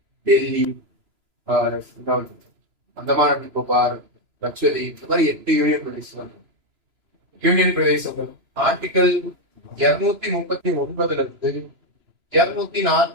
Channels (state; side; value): late; left; 3.0 ms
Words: டெல்லி, அந்தமான் நிக்கோபார், லட்சதீப், இந்த மாதிரி 8 யூனியன் பிரதேசம். யூனியன் பிரதேசங்கள் ஆர்டிகல் 239ல இருந்து